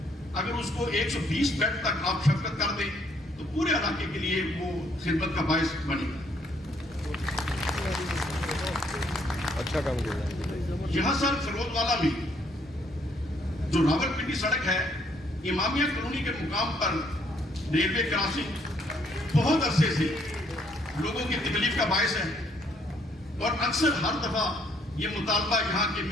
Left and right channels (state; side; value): normal; both; correlation 0.68